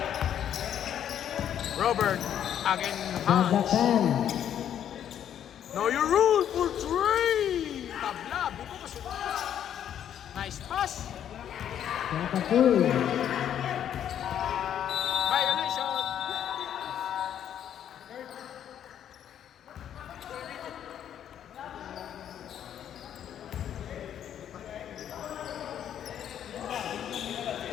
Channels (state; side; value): quieter; right; 9.8 dB